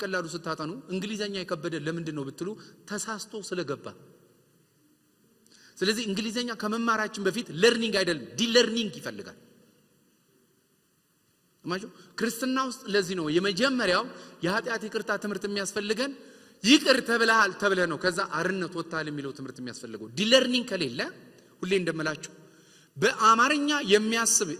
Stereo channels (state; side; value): identical; both; correlation 1.00